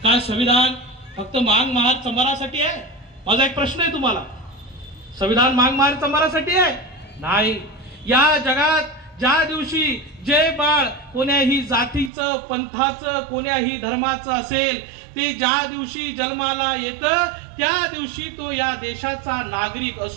काय संविधान फक्त मांग महार चंबारासाठी आहे? माझा एक प्रश्न आहे तुम्हाला. संविधान मांग महार चंबारासाठी आहे? नाही. या जगात ज्या दिवशी जे बाळ कोण्याही जातीचं, पंथाचं, कोण्याही धर्माचं असेल ते ज्या दिवशी जन्माला येतं त्या दिवशी तो या देशाचा नागरिक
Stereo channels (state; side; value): drops out; left; at 12.1 s